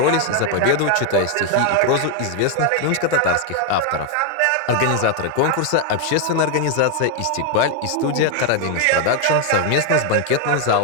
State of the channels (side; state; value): both; different; correlation 0.01